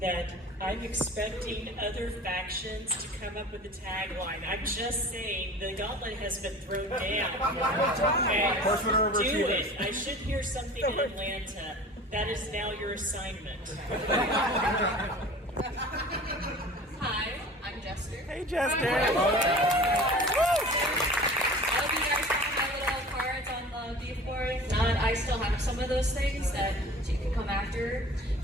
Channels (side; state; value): both; normal; correlation 0.41